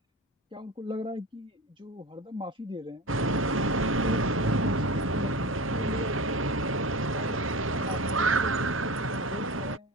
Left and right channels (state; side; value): normal; both; correlation 0.30